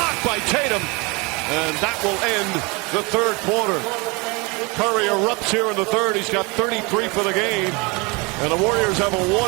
by Tatum. And that will end the third quarter. Curry erupts here in the third. He's got 33 for the game. And the Warriors have a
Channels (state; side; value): quieter; left; 27.7 dB